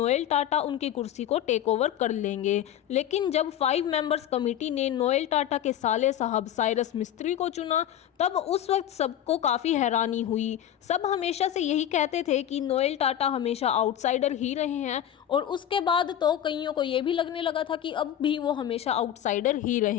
टाटा उनकी कुर्सी को टेक ओवर कर लेंगे। लेकिन जब 5 मेंबर्स कमेटी ने नोएल टाटा के साहब साइरस मिस्त्री को चुना, तब उस वक्त सबको काफ़ी हैरानी हुई। सब हमेशा से यही कहते थे कि नोएल टाटा हमेशा आउटसाइडर ही रहे हैं, और उसके बाद तो कईयों को ये भी लगने लगा था कि अब भी वो हमेशा आउटसाइडर ही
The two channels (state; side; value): quieter; right; 10.8 dB